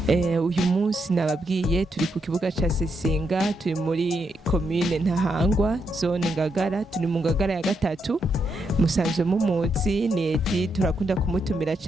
Uyu munsi nababwiye turi ku kibuga ca Sesinga, turi muri commune Ntahangwa, zone Ngagara, turi mu Ngagara ya gatatu. Musanzwe mumuzi ni Edi, turakunda kumutumira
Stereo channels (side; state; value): both; normal; correlation 0.81